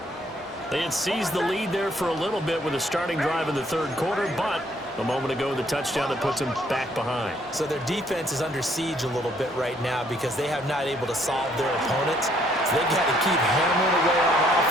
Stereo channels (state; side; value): normal; both; correlation 0.66